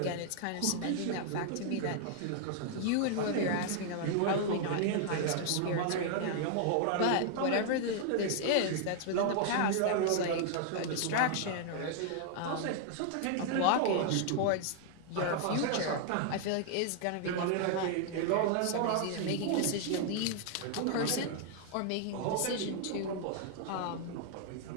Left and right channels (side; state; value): both; different; correlation 0.00